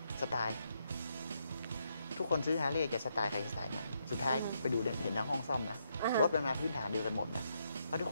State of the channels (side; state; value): both; inverted; correlation -0.78